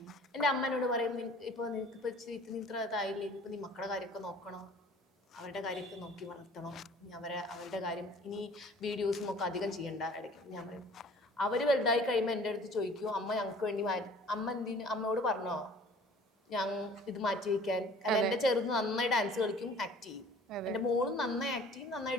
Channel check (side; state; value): both; normal; correlation 0.50